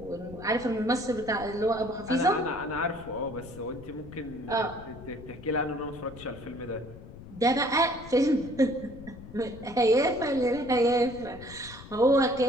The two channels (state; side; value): noise; left; rumble, 16 dB below the sound